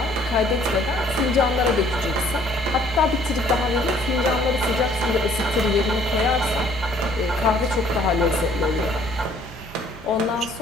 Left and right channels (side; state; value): both; normal; correlation 0.60